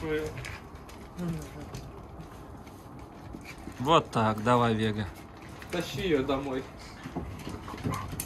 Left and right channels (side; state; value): both; identical; correlation 1.00